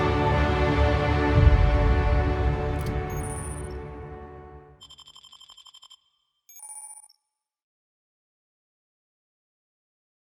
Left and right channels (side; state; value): both; identical; correlation 1.00